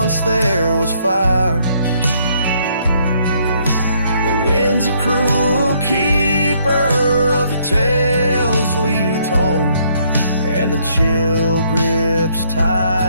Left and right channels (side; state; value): both; inverted; correlation -0.68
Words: there was fire. The wind's a cruel keeper of the tales we told, and the chill grips